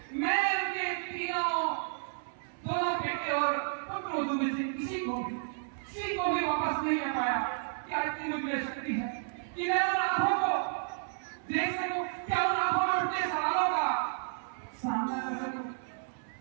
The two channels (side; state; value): left; silent; 56 dB below the other